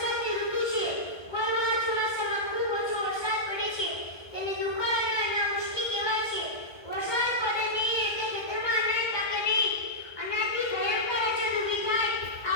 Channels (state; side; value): late; right; 1.2 ms